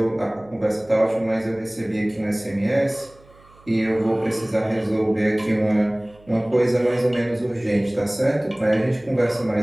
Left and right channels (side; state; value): right; noise; hum, 27 dB below the sound